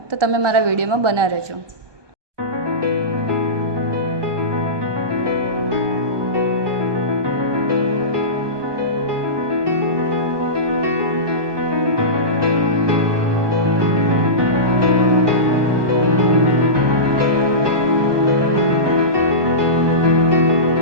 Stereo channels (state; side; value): late; left; 1.2 ms